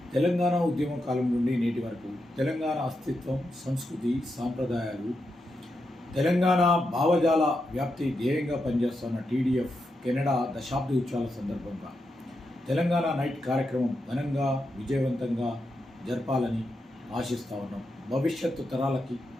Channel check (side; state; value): both; normal; correlation 0.86